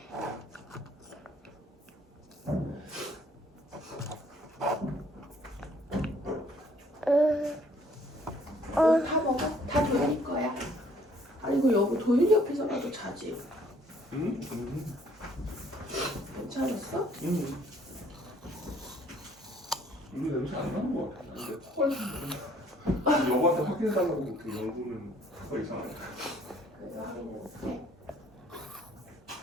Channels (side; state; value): both; normal; correlation 0.61